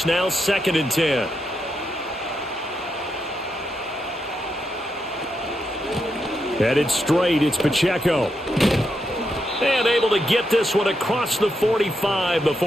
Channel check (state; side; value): normal; both; correlation 0.83